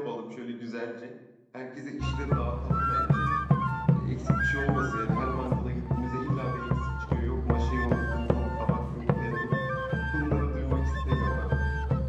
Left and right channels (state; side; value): identical; both; correlation 1.00